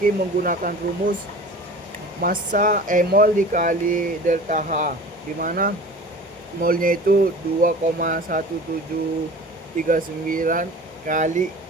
menggunakan rumus massa mol dikali delta H, di mana molnya itu 2,1739 kali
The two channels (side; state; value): both; normal; correlation 0.40